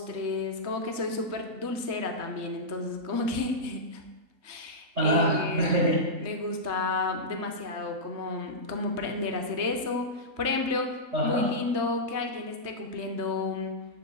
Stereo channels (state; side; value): late; left; 3.2 ms